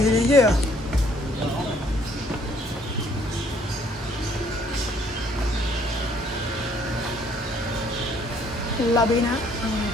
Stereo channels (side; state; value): both; normal; correlation 0.63